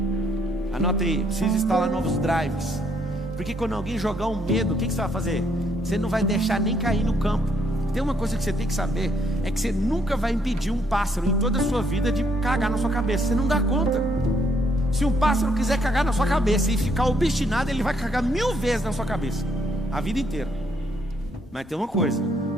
Anota aí, precisa instalar novos drives. Porque quando alguém jogar um medo, o que você vai fazer? Você não vai deixar nem cair no campo. Tem uma coisa que você tem que saber, é que você nunca vai impedir um pássaro em toda a sua vida de cagar na sua cabeça. Você não dá conta. Se um pássaro quiser cagar na sua cabeça e ficar obstinado, ele vai cagar 1000 vezes na sua cabeça, a vida inteira. Mas tem uma coisa,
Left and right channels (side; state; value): both; normal; correlation 0.71